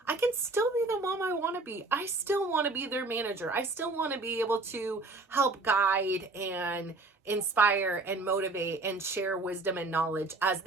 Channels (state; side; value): quieter; left; 3.3 dB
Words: I can still be the mom I want to be. I still want to be their manager. I still want to be able to help guide and inspire and motivate and share wisdom and knowledge as